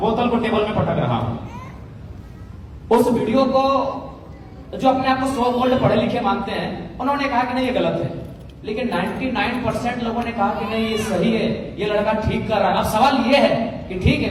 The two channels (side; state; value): both; identical; correlation 1.00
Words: बोतल को टेबल में पटक रहा हूं। उस वीडियो को जो अपने आप को 100 गोल्ड पढ़े लिखे मानते हैं, उन्होंने कहा कि नहीं ये गलत है, लेकिन 99% लोगों ने कहा कि नहीं ये सही है, ये लड़का ठीक कर रहा है। अब सवाल ये है कि ठीक है,